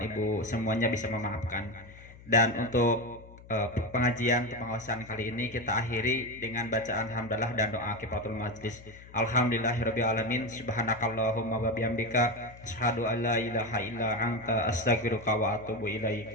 Ibu semuanya bisa memaafkan. Dan untuk pengajian pengawasan kali ini kita akhiri dengan bacaan hamdalah dan doa kifaratul majlis. Alhamdulillahirabbil alamin, subhanakallahumma wa bihamdika asyhadu an la ilaha illa anta astaghfiruka wa atubu ilaik.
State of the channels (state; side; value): noise; left; hum, 20 dB below the sound